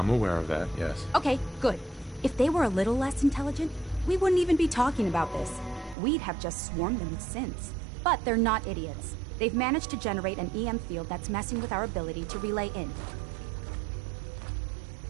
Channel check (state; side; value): drops out; left; at 6.0 s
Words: aware of that, yes. Okay, good. If they were a little less intelligent, we wouldn't even be talking about this. We'd have just swarmed them with synths. But they're not idiots. They've managed to generate an EM field that's messing with our ability to relay in.